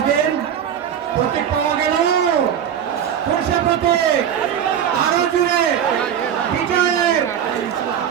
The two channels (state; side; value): quieter; left; 9.1 dB